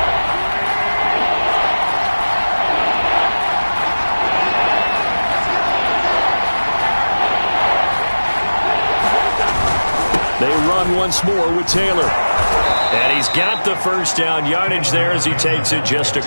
Once more with Taylor. And he's got the first down yardage there as he takes it just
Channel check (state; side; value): inverted; both; correlation -1.00